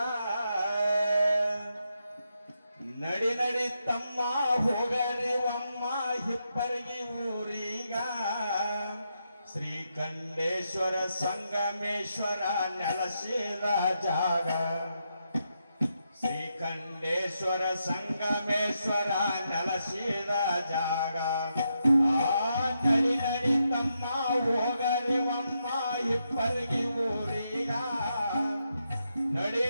ನಡಿ ನಡಿ ತಮ್ಮ ಹೋಗರಿ ಒಮ್ಮ ಹಿಪ್ಪರಿಗಿ ಊರಿಗ ಶ್ರೀಕಂಠೇಶ್ವರ ಸಂಗಮೇಶ್ವರ ನೆಲಸಿದ ಜಾಗ ಶ್ರೀಕಂಠೇಶ್ವರ ಸಂಗಮೇಶ್ವರ ನೆಲಸಿದ ಜಾಗ ನಡಿ ನಡಿ ತಮ್ಮ ಹೋಗರಿ ಒಮ್ಮ ಹಿಪ್ಪರಿಗಿ ಊರಿಗ ನಡಿ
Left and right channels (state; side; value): inverted; both; correlation -0.83